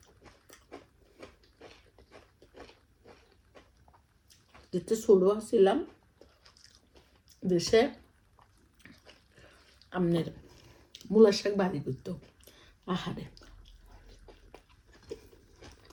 যেতে ছোট ছিলাম দেশে আমনের মূলার শাক বাড়ি করতো আহারে।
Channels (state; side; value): identical; both; correlation 1.00